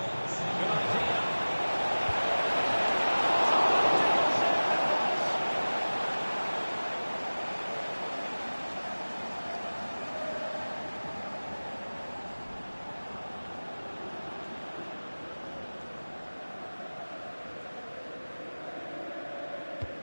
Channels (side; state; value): both; inverted; correlation -1.00